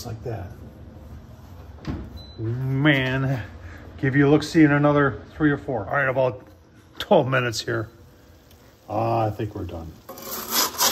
like that. Man, give you a look-see in another 3 or 4. All right, about 12 minutes here. I think we're done.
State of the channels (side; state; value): both; identical; correlation 1.00